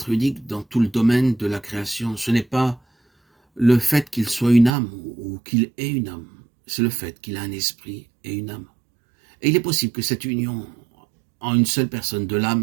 unique dans tout le domaine de la création, ce n'est pas le fait qu'il soit une âme ou qu'il ait une âme, c'est le fait qu'il a un esprit et une âme. Et il est possible que cette union en une seule personne de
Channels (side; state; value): left; drops out; at 4.7 s